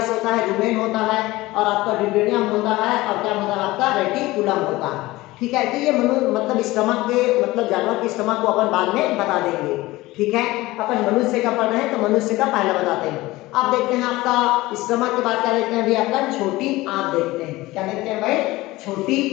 होता है, रुमेन होता है, और आपका ड्यूडेनियम होता है, और क्या होता है, आपका रेटिकुलम होता है। ठीक है, तो ये मतलब स्टमक के, मतलब जानवर की स्टमक को अपन बाद में बता देंगे। ठीक है, अपन मनुष्य का पढ़ रहे हैं तो मनुष्य का पहले बताते हैं। अब देखते हैं आपका स्टमक के बाद क्या देखते हैं भाई, आपका छोटी आंत देखते हैं। क्या देखते हैं भाई, छोटी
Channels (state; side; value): quieter; right; 19.1 dB